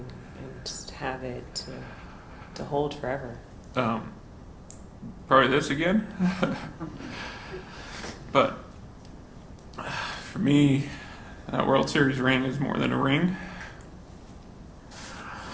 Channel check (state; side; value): identical; both; correlation 1.00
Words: and just have it to hold forever? Probably this again. But for me, that World Series ring is more than a ring.